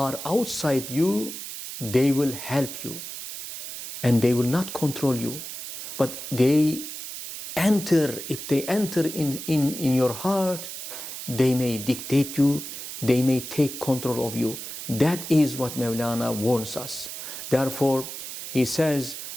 outside you, they will help you and they will not control you. But if they enter in your heart, they may dictate you, they may take control of you. That is what Mawlana warns us. Therefore, he says,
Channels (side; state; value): right; noise; hiss, 9 dB below the sound